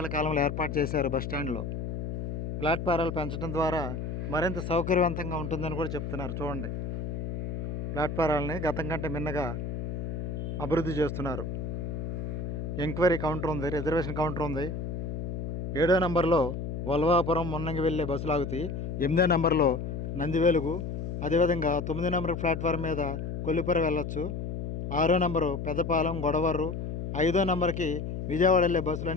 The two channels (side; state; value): left; noise; hum, 4 dB below the sound